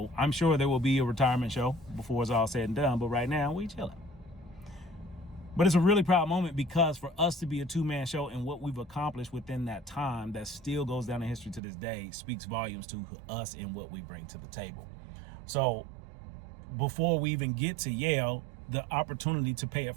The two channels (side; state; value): left; drops out; at 11.6 s